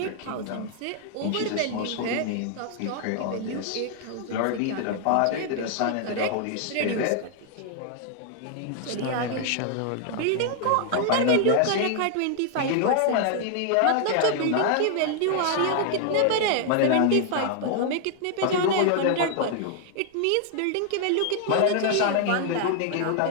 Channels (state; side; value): different; both; correlation 0.00